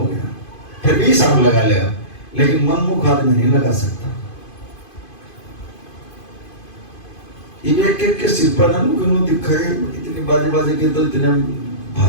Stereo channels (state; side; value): late; right; 2.5 ms